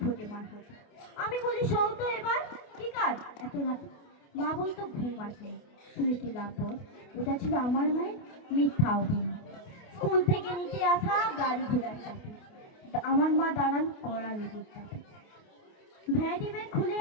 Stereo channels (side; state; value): right; late; 28 ms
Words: ফোটে মার হাতে। আমি বলি সৌতো এবার কি কাজ এত রাতে। মা বলতো ঘুম আসে, শুনে কি লাভ বল। ওটা ছিল আমার মায়ের মিথ্যা অভিনয়। স্কুল থেকে নিতে আসা গাড়ি ঘোড়ার চাপে আমার মা দাঁড়ান কড়া রোগের চাপে। ভ্যারাইটি ব্যাগ খুলে